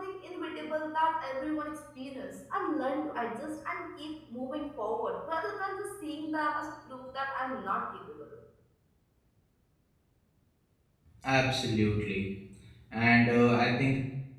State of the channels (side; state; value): both; identical; correlation 1.00